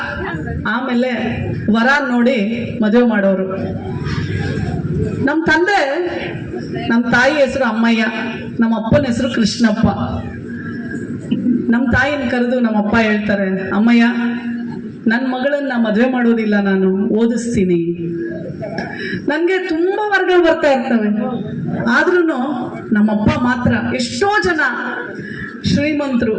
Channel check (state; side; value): identical; both; correlation 1.00